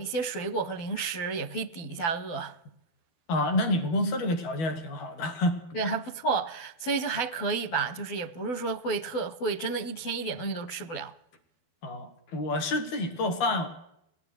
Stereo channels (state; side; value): late; right; 12 ms